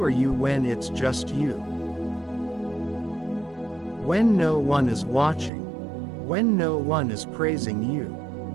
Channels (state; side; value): drops out; left; at 5.5 s